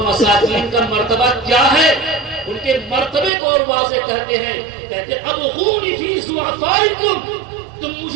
کا مرتبہ کیا ہے, ان کے مرتبے کو اور واضح کہتے ہیں. کہتے ہیں ابغونی فی ضعفائکم, تم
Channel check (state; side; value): drops out; left; at 3.3 s